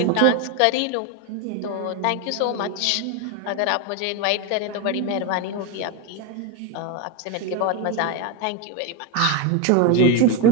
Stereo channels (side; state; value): both; different; correlation 0.03